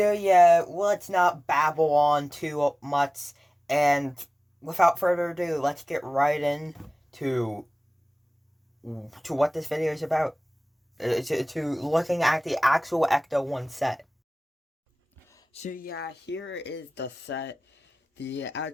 yeah, let's not babble on too much, and without further ado, let's get right into what this video is about. To looking at the actual Ecto 1 set. So yeah, here is the set. The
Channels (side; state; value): both; normal; correlation 0.98